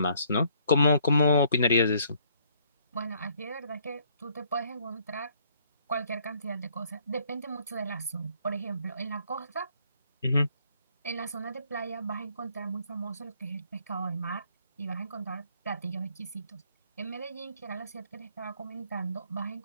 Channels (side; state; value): both; inverted; correlation -0.65